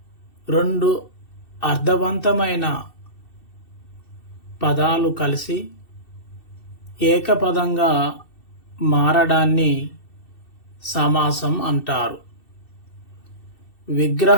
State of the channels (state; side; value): late; right; 2.7 ms